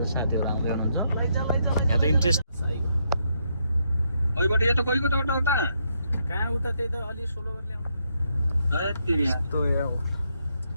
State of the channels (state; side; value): inverted; both; correlation -0.77